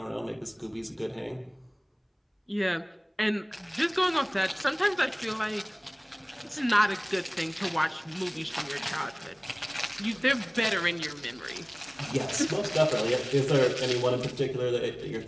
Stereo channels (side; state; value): both; identical; correlation 1.00